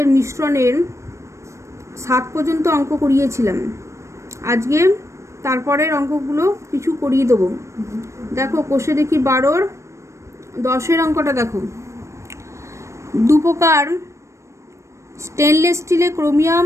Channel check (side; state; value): left; late; 0.14 ms